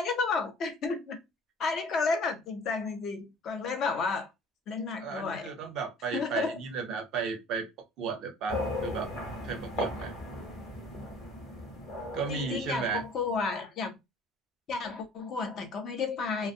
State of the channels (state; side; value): normal; both; correlation 0.49